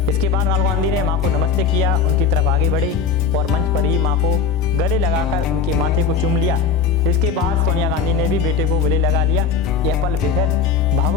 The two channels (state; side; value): quieter; right; 5.7 dB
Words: इसके बाद राहुल गांधी ने मां को नमस्ते किया, उनकी तरफ आगे बढ़े और मंच पर ही मां को गले लगाकर उनके माथे को चूम लिया। इसके बाद सोनिया गांधी ने भी बेटे को गले लगा लिया। यह पल बेहद